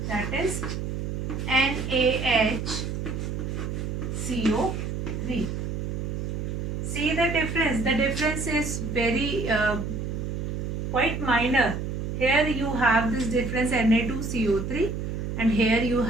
that is NaHCO3. See the difference. The difference is very quite minor. Here you have this difference Na2CO3 and here you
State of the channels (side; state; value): right; noise; hum, 3 dB below the sound